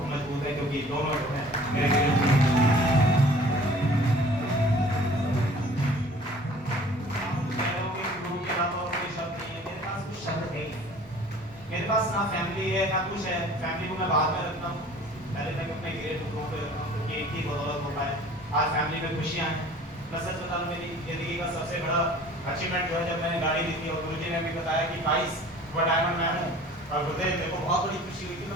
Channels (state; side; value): normal; both; correlation 0.49